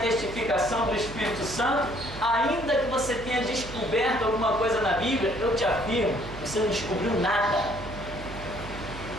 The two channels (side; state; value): right; noise; hum, 13 dB below the sound